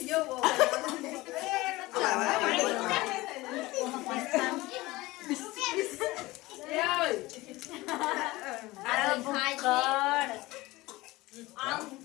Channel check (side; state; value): right; quieter; 20.0 dB